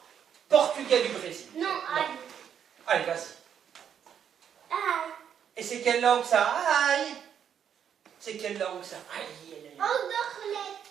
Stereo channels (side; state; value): left; quieter; 8.5 dB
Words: portugais du Brésil. Non, aïe. Allez, vas-y. Aïe. Et c'est quelle langue, ça? Aïe. C'est quelle langue, ça? Aïe.